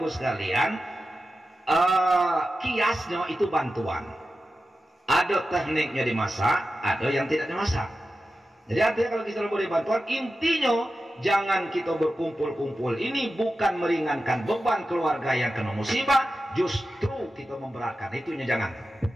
sekalian, kiasnya itu bantuan. Ada tekniknya dimasak, ada yang tidak dimasak. Jadi artinya kalau kita boleh bantuan, intinya jangan kita berkumpul-kumpul. Ini bukan meringankan beban keluarga yang kena musibah, justru kita memberatkan. Itunya jangan.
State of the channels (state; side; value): normal; both; correlation 0.92